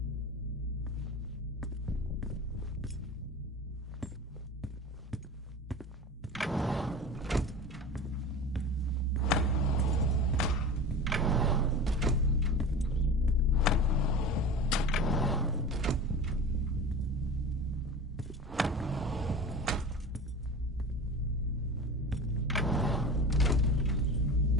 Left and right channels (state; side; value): normal; both; correlation 0.32